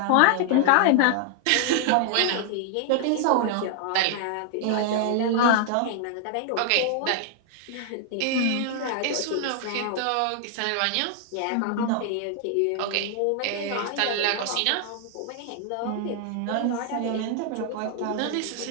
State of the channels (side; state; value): both; different; correlation 0.00